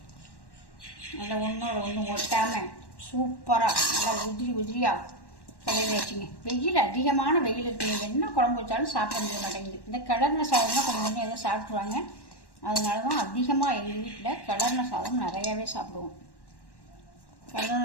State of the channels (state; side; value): late; right; 1.1 ms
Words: நல்லா ஒன்றோட ஒன்று ஒட்டாமல் சூப்பராக நல்லா உதிரியாக கடையில் வச்சுங்க. வெயில் அதிகமான வெயில் இருக்குது, என்ன குழம்பு வச்சாலும் சாப்பிட முடிய மாட்டேங்குது. இந்த கிளர்ன சாதம்னா கொஞ்சம் எதாவது சாப்பிட்ருவாங்க. அதனால தான் அதிகமாக எங்கள் வீட்டில் கிளர்ன சாதம் நிறையாவே சாப்பிடுவோம்.